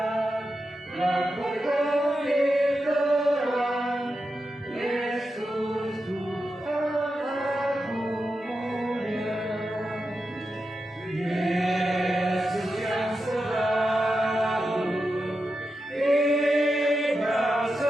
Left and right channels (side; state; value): both; normal; correlation 0.89